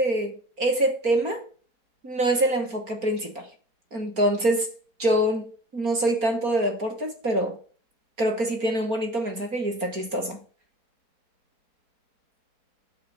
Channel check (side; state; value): left; late; 4.3 ms